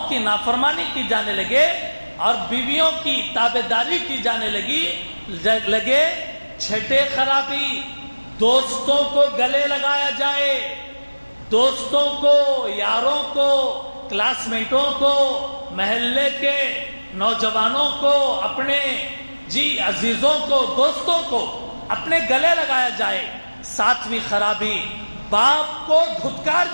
لگے اور بیویوں کی تابعداری کی جانے لگے۔ چھٹے خرابی دوستوں کو گلے لگایا جائے، دوستوں کو، یاروں کو، کلاس میٹوں کو، محلے کے نوجوانوں کو، اپنے عزیزوں کو، دوستوں کو اپنے گلے لگایا جائے۔ ساتویں خرابی باپ کو دھتکار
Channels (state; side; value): inverted; both; correlation -1.00